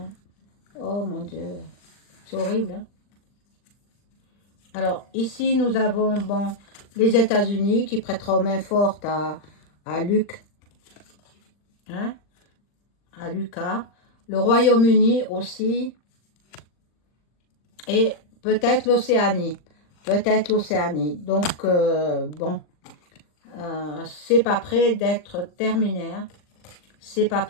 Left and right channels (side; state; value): right; late; 40 ms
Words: Oh mon Dieu, c'est horrible, hein. Alors, ici, nous avons, bon, les États-Unis qui prêteront main forte à Luc, hein, à Lucas. Le Royaume-Uni aussi. Et peut-être l'Océanie. Peut-être l'Océanie. Donc, bon, c'est pas prêt d'être terminé, hein. C'est pas